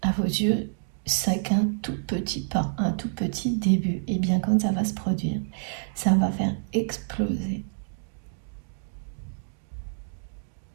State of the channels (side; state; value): left; silent; digital silence